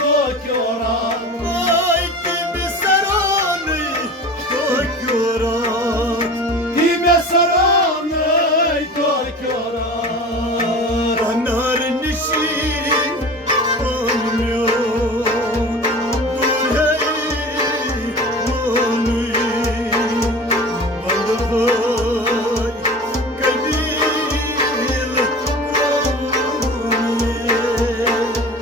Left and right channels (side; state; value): both; normal; correlation 0.36